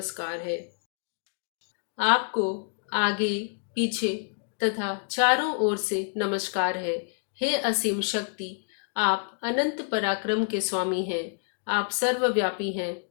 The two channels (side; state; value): right; silent; 59 dB below the other